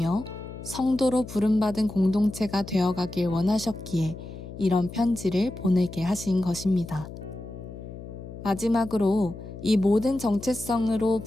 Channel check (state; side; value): noise; left; hum, 12 dB below the sound